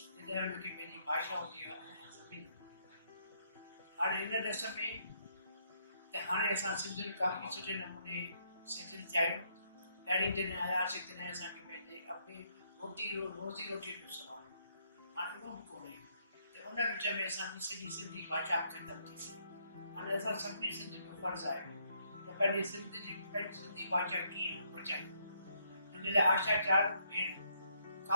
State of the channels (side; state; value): both; inverted; correlation -0.73